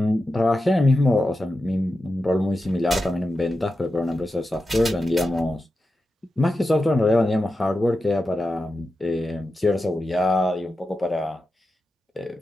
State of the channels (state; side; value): normal; both; correlation 0.90